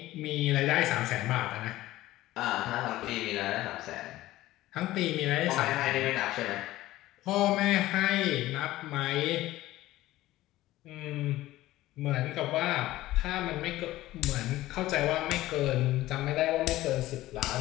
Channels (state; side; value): quieter; right; 16.2 dB